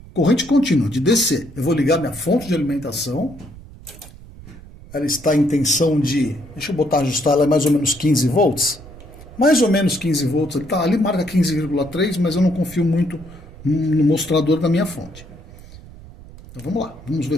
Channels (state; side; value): noise; right; rumble, 18 dB below the sound